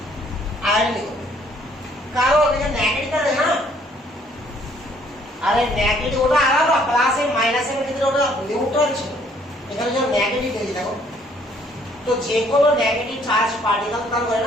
আয়োডিন করবে। কারণ এটা নেগেটিভ আছে না। আরে নেগেটিভ ওটা আলাদা, প্লাস এর মাইনাস এর ভিতরে ওটা নিউট্রাল ছিল, এখানে যখন নেগেটিভ দিয়েছি দেখো। তো যে কোনো নেগেটিভ চার্জ পার্টিকেল তার হয়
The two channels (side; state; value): both; normal; correlation 0.63